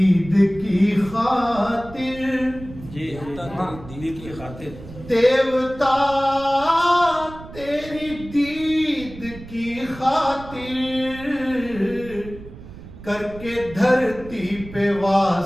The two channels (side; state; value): right; noise; rumble, 16 dB below the sound